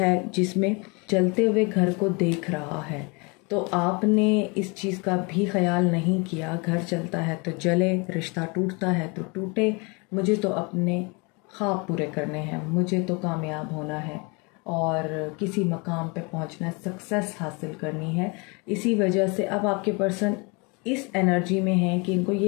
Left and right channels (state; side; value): quieter; right; 30.0 dB